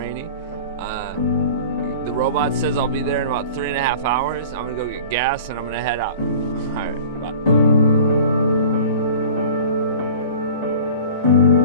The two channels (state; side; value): inverted; both; correlation -0.42